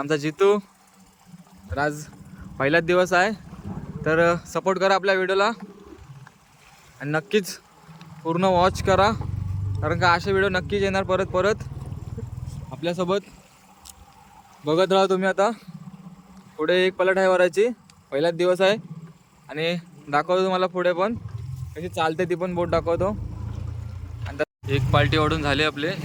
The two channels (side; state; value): both; identical; correlation 1.00